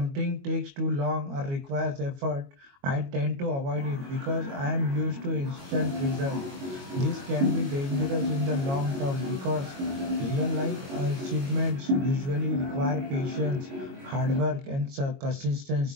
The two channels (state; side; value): late; left; 22 ms